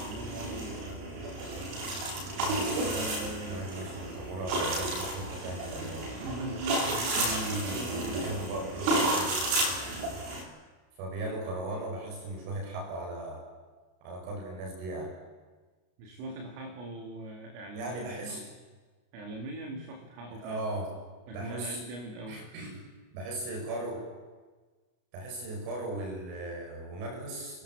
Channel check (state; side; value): late; left; 33 ms